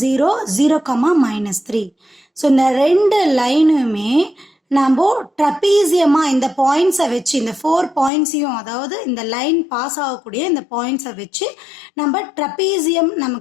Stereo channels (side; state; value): right; drops out; at 8.1 s